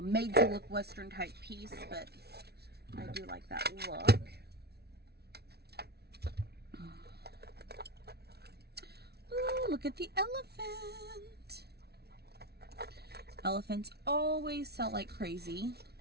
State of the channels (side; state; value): left; late; 0.47 ms